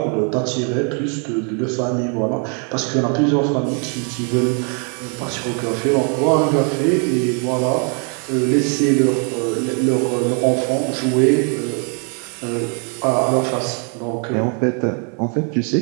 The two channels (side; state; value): left; quieter; 39.8 dB